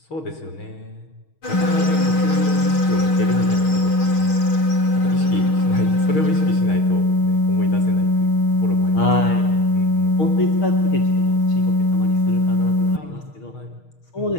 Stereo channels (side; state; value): right; late; 6.4 ms